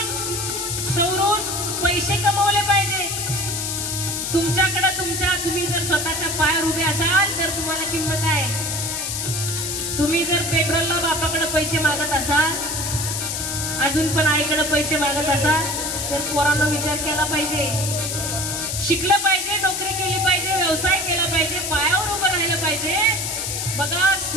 सवरून पैसे कमवले पाहिजे. तुमच्याकडे तुम्ही जर स्वतःच्या पायावर उभे असाल तर तुम्हाला किंमत आहे. तुम्ही जर पेट्रोलला बापाकडे पैसे मागत असाल, अजून पण आईकडे पैसे मागत असाल, तर पोरांना विचार केला पाहिजे. शिकलं पाहिजे, नोकरी केली पाहिजे, व्यवसाय केला पाहिजे, पायावर उभं राहिलं पाहिजे. बघा,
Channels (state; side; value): noise; left; hiss, 2 dB below the sound